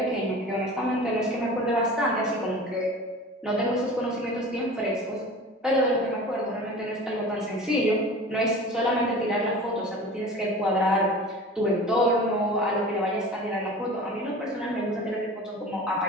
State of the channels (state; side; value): normal; both; correlation 0.38